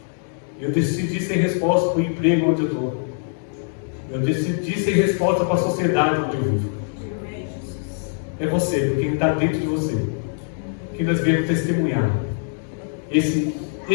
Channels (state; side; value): silent; right; digital silence